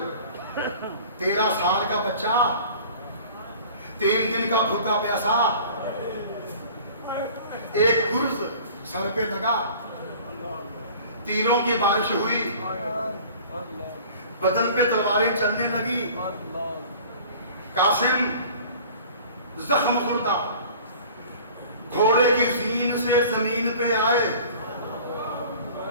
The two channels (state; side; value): inverted; both; correlation -0.46